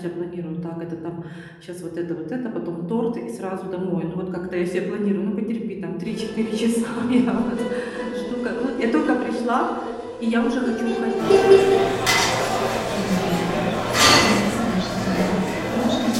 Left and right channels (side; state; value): both; identical; correlation 1.00